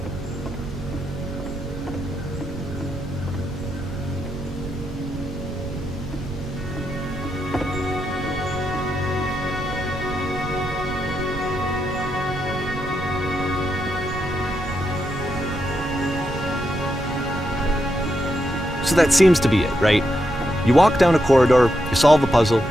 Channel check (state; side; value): noise; right; rumble, 9 dB below the sound